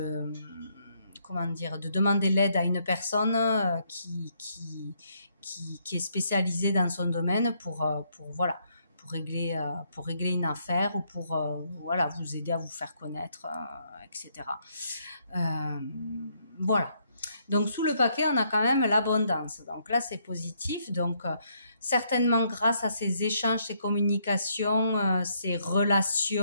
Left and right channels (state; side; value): inverted; both; correlation -0.73